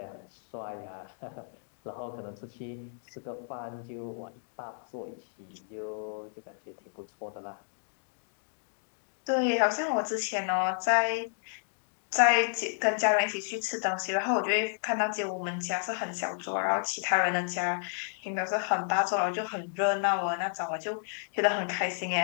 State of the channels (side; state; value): right; silent; digital silence